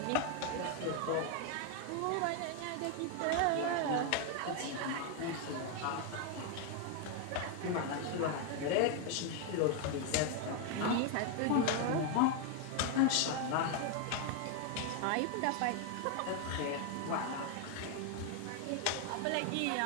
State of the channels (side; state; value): both; different; correlation 0.01